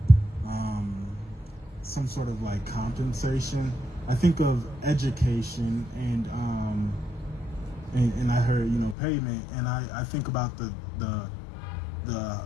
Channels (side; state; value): right; drops out; at 9.0 s